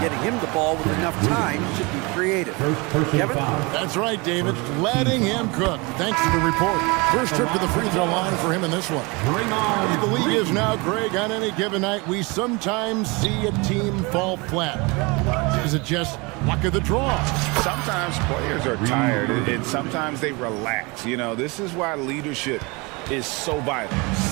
getting him the ball with enough time to be creative. Kevin? That's right, David. Letting him cook. Thanks to the report. First trip to the free throw line for him in this one. The league is now, Greg, on any given night, we sometimes see a team fall flat. Is it just luck of the draw? Sometimes players are tired, and sometimes they relax. You know, this is why leadership is so vital,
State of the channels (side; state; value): left; quieter; 27.1 dB